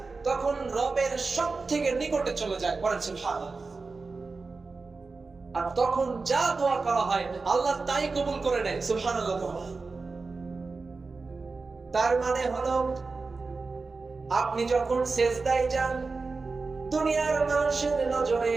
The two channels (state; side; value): quieter; left; 4.1 dB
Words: তখন রবের সবথেকে নিকটে চলে যায়, বলেন সুবহানাল্লাহ। আর তখন যা দোয়া করা হয় আল্লাহ তাই কবুল করে নেয়, সুবহানাল্লাহ। তার মানে হলো আপনি যখন সিজদায় যান দুনিয়ার মানুষের নজরে,